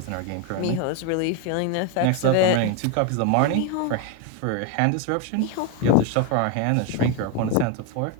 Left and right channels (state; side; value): different; both; correlation 0.02